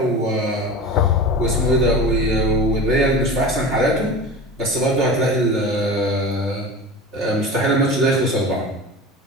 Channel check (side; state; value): both; normal; correlation 0.32